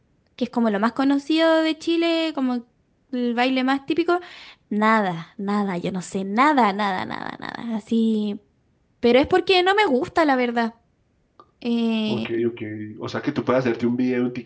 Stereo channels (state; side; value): identical; both; correlation 1.00